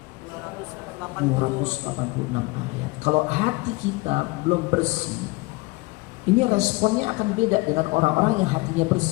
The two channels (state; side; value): quieter; right; 24.2 dB